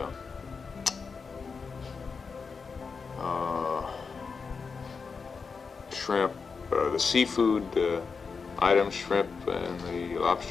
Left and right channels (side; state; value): right; quieter; 5.1 dB